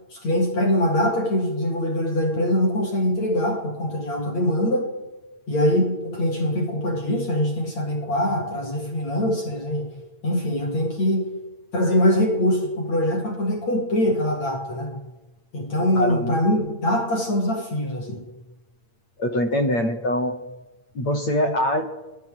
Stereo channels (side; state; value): right; late; 8.7 ms